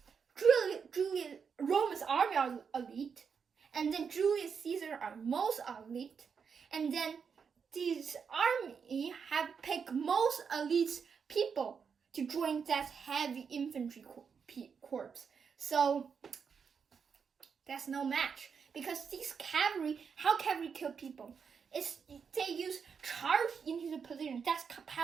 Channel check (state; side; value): quieter; left; 6.3 dB